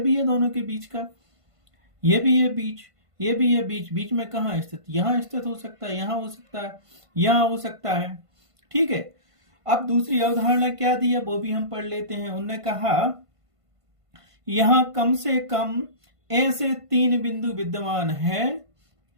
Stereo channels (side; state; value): left; late; 1.5 ms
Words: है दोनों के बीच का, ये भी है बीच, ये भी है बीच। बीच में कहाँ स्थित? यहाँ स्थित हो सकता है, यहाँ हो सकता है, यहाँ हो सकता है। ठीक है, अब दूसरी अवधारणा क्या दी है वो भी हम पढ़ लेते हैं। उन्होंने कहा यहां कम से कम ऐसे 3 बिंदु विद्यमान है,